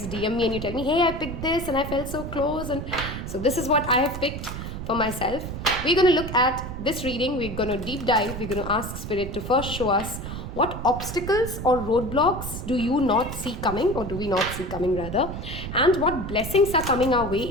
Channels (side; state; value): right; noise; rumble, 7 dB below the sound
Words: DM me and you tell me, hey, I picked this and I felt so close. And so this is what I have picked for myself. We're going to look at this reading. We're going to deep dive. We're going to ask Spirit to first show us what obstacles or roadblocks do you not see coming, or do we not see coming rather, and what blessings are coming our way